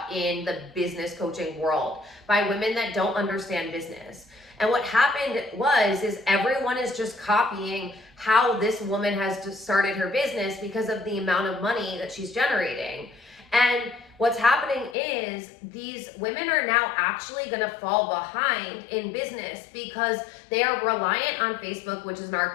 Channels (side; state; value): right; drops out; at 15.0 s